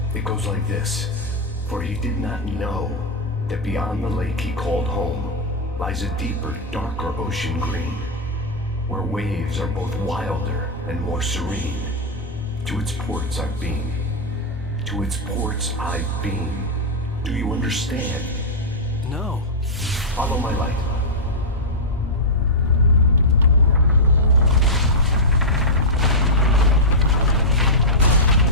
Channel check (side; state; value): both; normal; correlation -0.06